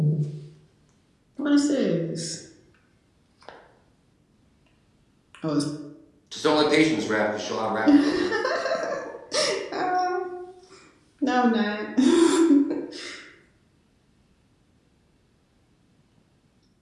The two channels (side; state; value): both; identical; correlation 1.00